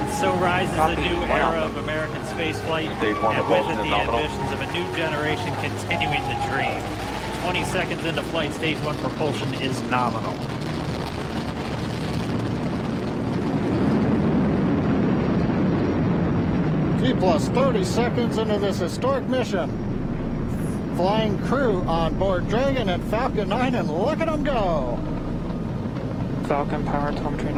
so rises a new era of American spaceflight, and with it the ambitions of a new generation continuing the dream. 20 seconds into flight, stage 1 propulsion is nominal. T plus 30 seconds into this historic mission. Flying crew on board Dragon and Falcon 9, and look at them go. Falcon power telemetry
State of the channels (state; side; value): identical; both; correlation 1.00